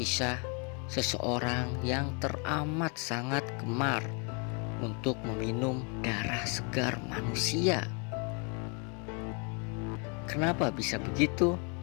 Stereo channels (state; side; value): quieter; right; 35.5 dB